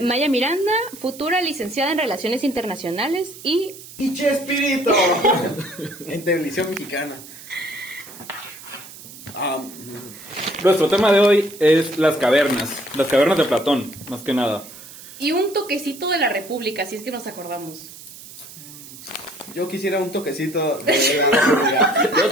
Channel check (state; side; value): noise; right; hiss, 16 dB below the sound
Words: Maya Miranda, futura licenciada en Relaciones Internacionales y... ¡Y Chespirito! En televisión mexicana. Nuestro tema de hoy es las cavernas de Platón, más que nada. Y un toquecito de la República, si es que nos acordamos. Yo quisiera un toquecito de... Y